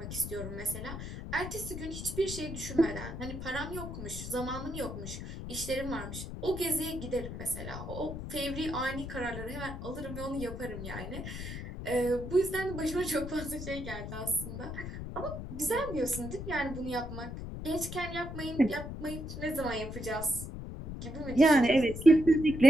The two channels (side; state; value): left; noise; rumble, 8 dB below the sound